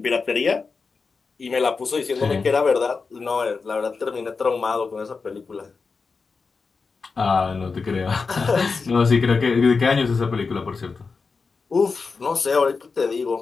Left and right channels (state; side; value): quieter; right; 4.7 dB